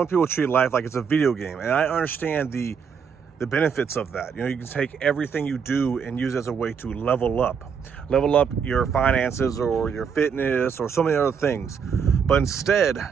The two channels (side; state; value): left; quieter; 6.6 dB